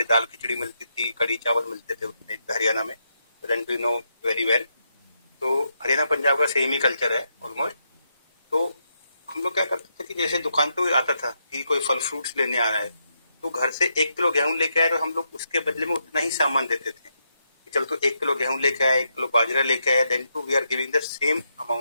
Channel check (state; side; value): inverted; both; correlation -0.81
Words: दाल खिचड़ी मिलती थी, कड़ी चावल मिलते थे उस टाइम पे हरियाणा में, then too know very well. तो हरियाणा पंजाब का सेम ही कल्चर है ऑलमोस्ट। तो हम लोग क्या करते थे कि जैसे दुकान पे कोई आता था कि कोई फल फ्रूट्स लेने आ रहा है, तो घर से 1 किलो गेहूं लेके आए, तो हम लोग उसके बदले में उतना ही सामान देते थे। चल तो 1 किलो गेहूं लेके आया, 1 किलो बाजरा लेके आया, then too we are giving the same